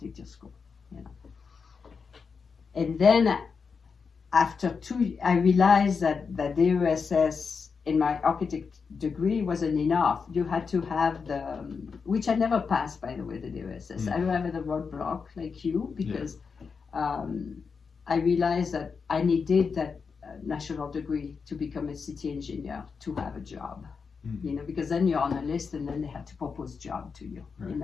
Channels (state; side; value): quieter; right; 5.5 dB